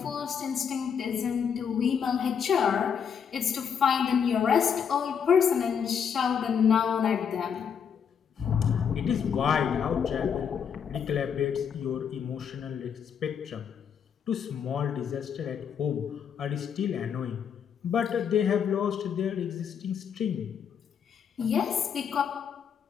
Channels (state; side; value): quieter; right; 7.4 dB